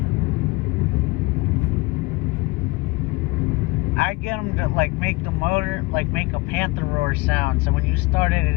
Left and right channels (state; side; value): quieter; right; 23.3 dB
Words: I get them to like make the motor make a panther roar sound. So when you started